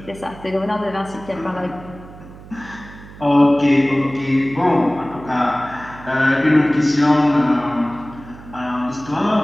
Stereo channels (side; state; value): right; noise; hum, 18 dB below the sound